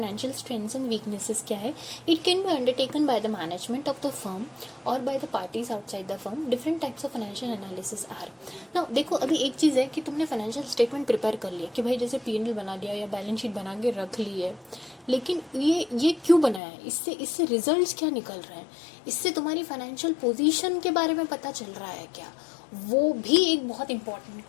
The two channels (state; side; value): drops out; right; at 16.6 s